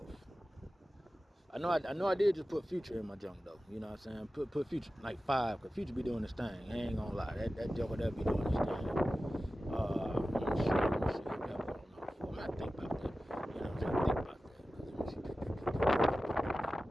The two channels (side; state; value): both; normal; correlation 0.95